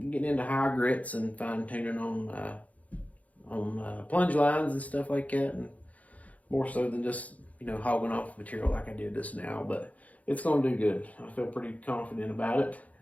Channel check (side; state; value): right; late; 0.070 ms